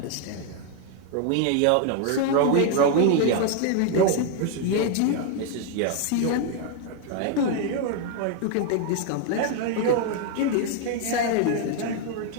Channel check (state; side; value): different; both; correlation 0.00